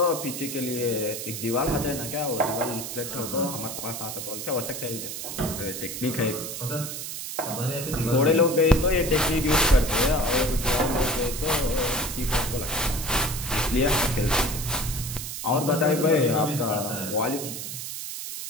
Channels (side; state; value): right; noise; hiss, 7 dB below the sound